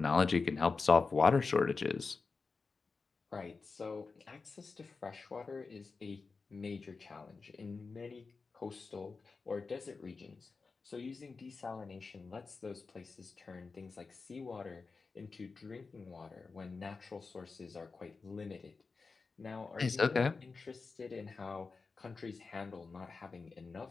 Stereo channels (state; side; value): quieter; right; 4.4 dB